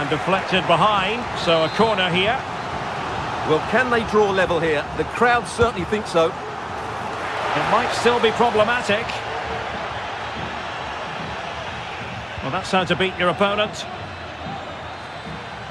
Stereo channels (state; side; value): identical; both; correlation 1.00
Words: deflected behind, so a corner here. Well, can they draw level here? The crowd certainly think so. It might still be problematic. Well, that's how to beat your opponent.